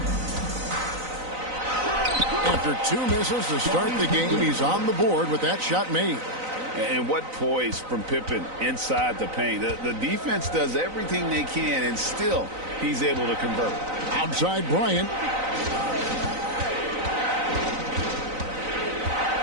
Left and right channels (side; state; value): left; late; 3.9 ms